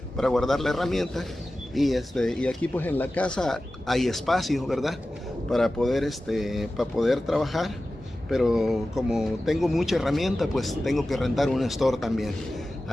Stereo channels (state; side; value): normal; both; correlation 0.95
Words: herramienta. Y aquí pues en la casa hay espacio, ¿verdad? Para poder trabajar. Pero como tengo mucha herramienta, pues tengo que rentar un store también.